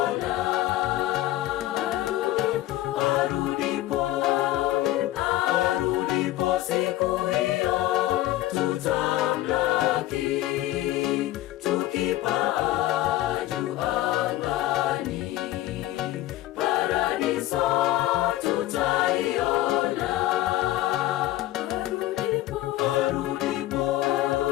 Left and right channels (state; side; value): quieter; right; 15.5 dB